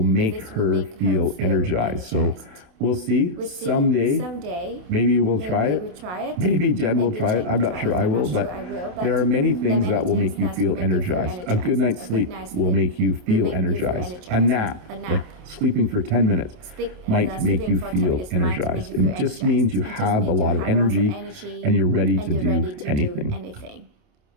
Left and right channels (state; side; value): late; left; 28 ms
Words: her feel energized. So we'll see. Someday, maybe we'll try it. Maybe Jen will try it. I'm not sure I will, but there are many things that will make you feel energized. A good night's sleep will make you feel energized. A nap, like sleeping for 10 minutes, might make you feel energized. It just means you have a lot of energy and you're ready to do anything.